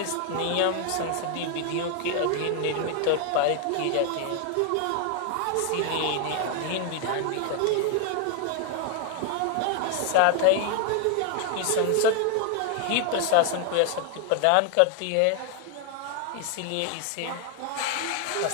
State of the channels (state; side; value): different; both; correlation 0.00